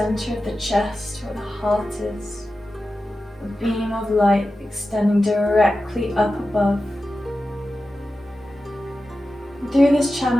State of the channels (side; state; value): both; normal; correlation 0.93